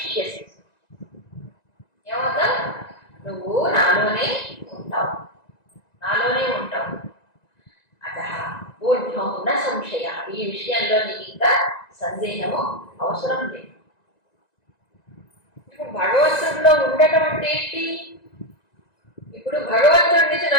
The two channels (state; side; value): late; right; 1.9 ms